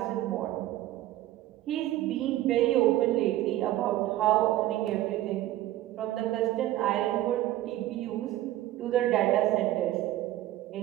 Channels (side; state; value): left; quieter; 14.8 dB